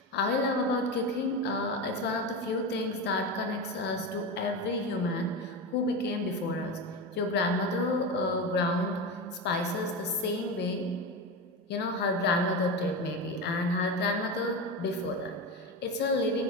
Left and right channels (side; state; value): both; normal; correlation 0.20